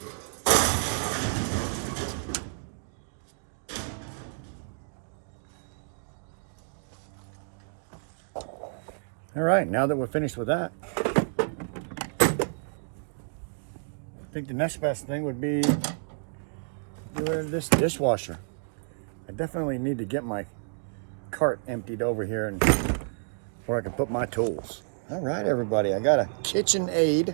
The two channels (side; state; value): left; silent; digital silence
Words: All right, now that we're finished with that, think the next best thing would be doing this dishwasher. I definitely need to get my cart emptied over here and where I can put my tools. All right, everybody, I got a KitchenAid